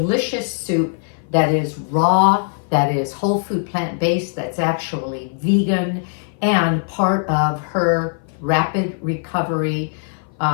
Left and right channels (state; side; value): silent; right; 58 dB below the other